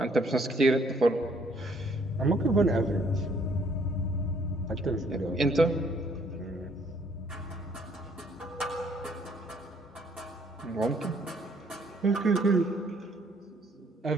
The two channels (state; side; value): normal; both; correlation 0.64